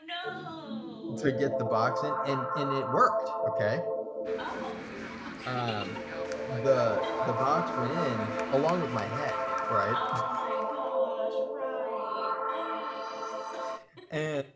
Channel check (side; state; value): both; identical; correlation 1.00